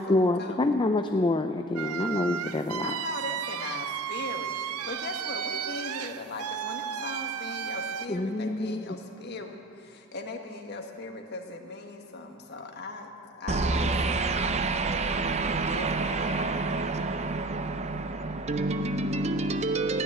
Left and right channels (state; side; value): normal; both; correlation 0.41